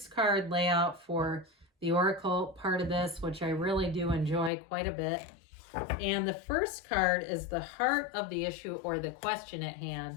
layout for the Oracle part of this, which I really do enjoy quite a bit. And the first card is the heart of the issue or the question at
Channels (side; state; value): right; drops out; at 4.5 s